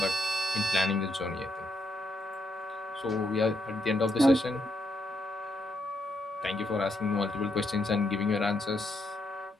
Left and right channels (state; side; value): normal; both; correlation 0.79